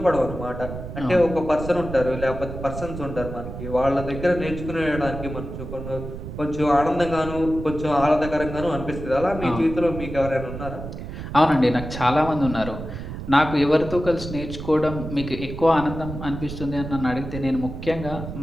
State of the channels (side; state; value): right; noise; rumble, 9 dB below the sound